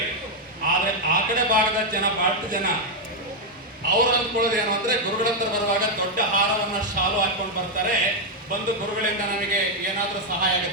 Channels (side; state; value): both; normal; correlation 0.01